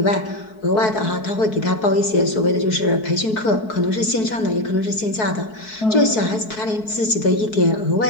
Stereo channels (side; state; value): right; late; 4.6 ms